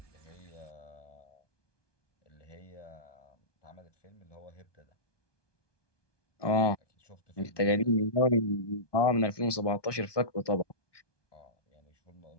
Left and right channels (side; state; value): right; late; 1.2 ms